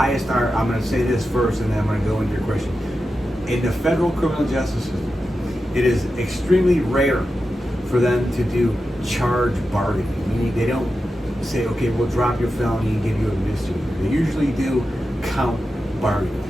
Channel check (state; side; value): normal; both; correlation 0.91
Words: our. I'm going to say this first, and then I'm going to go into your question. In the federal criminal justice system, it is extremely rare for them to do charge bargaining. Meaning they don't say, okay, we'll drop your felony and give you a misdemeanor. They usually do count bargaining.